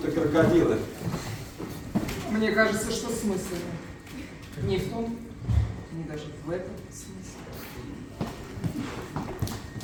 крокодилы. Мне кажется, что смысл не в том, не даже в этом смысле.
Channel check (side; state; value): both; identical; correlation 1.00